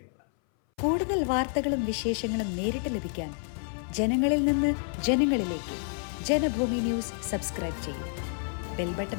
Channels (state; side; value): silent; right; 59 dB below the other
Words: കൂടുതൽ വാർത്തകളും വിശേഷങ്ങളും നേരിട്ട് ലഭിക്കാൻ ജനങ്ങളിൽ നിന്ന് ജനങ്ങളിലേക്ക് ജനഭൂമി ന്യൂസ് സബ്സ്ക്രൈബ് ചെയ്യൂ. ബെൽ ബട്ടൺ